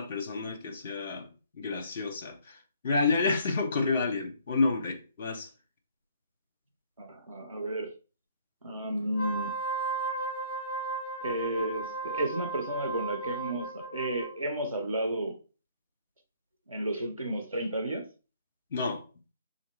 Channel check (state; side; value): inverted; both; correlation -0.60